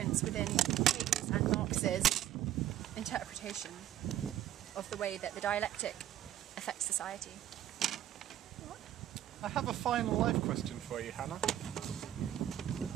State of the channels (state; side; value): quieter; left; 12.1 dB